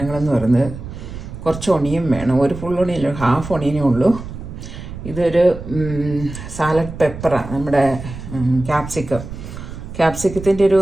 പറയുന്നത് കുറച്ച് ഒണിയൻ വേണം. ഒരു ഫുൾ ഒണിയൻ, ഹാഫ് ഒണിയനേ ഉള്ളൂ. ഇതൊരു സാലഡ് പെപ്പറാണ്, നമ്മുടെ ക്യാപ്സിക്കത്തിൻ്റെ ഒരു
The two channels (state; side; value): noise; right; rumble, 11 dB below the sound